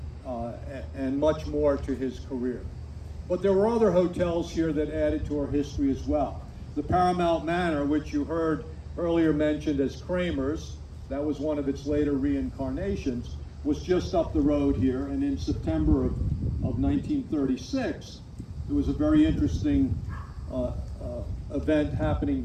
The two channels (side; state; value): both; identical; correlation 1.00